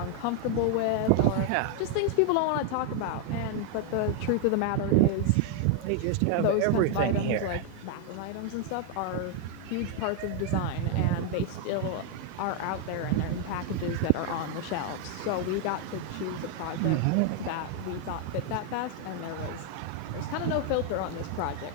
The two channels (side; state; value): both; different; correlation 0.00